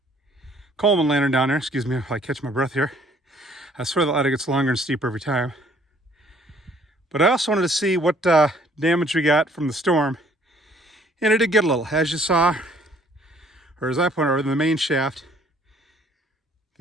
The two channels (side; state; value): both; normal; correlation 0.60